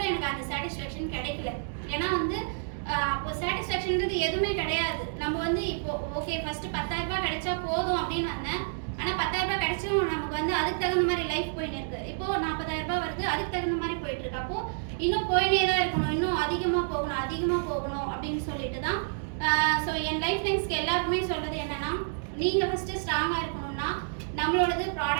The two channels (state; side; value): silent; left; digital silence